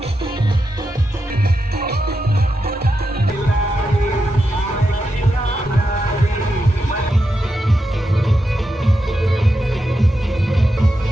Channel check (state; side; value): normal; both; correlation 0.87